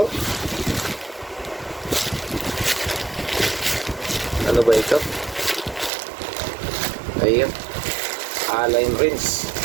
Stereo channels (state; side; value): drops out; left; at 5.9 s